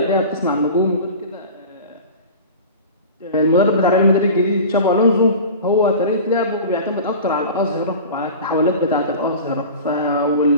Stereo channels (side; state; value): both; inverted; correlation -0.35